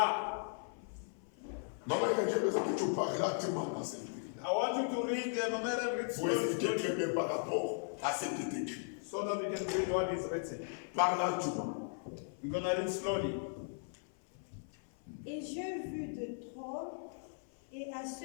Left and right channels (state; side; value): silent; right; 53 dB below the other